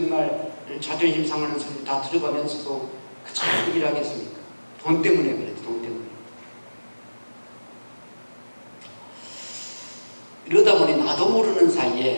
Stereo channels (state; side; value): inverted; both; correlation -1.00